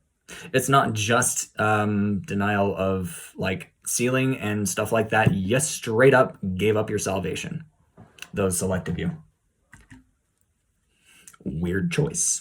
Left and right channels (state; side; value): identical; both; correlation 1.00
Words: It's not just denial of like sealing and stuff like that. You straight up gave up your salvation. Those selected you. Weird